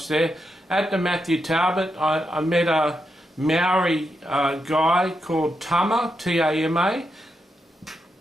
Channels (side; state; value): both; normal; correlation 0.84